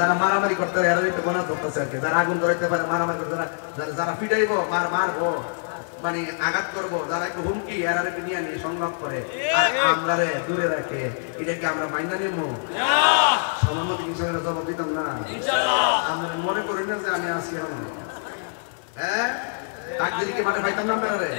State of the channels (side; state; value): right; silent; 61 dB below the other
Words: মারামারি করতে পারে এরা একটু গণনা করতেছে আর কি, যারা আগুন ধরাইতে পারে, মারামারি করতে, যারা পিটাইবো, মারবো, মানে আঘাত করবো, যারা একটু হুমকি এরা একটু নিয়ে নিয়ে সংগ্রাম করে, আর আমরা দূরে রাখে, এটাকে আমরা মাইনা নেবো? আমার মতো কিষানের জবাব দিতাম না। আপনারা মনে করেন না যে আমি আসি আমার হ্যাঁ ডাক দিলে কি মাঠে পাইতাম না আপনারা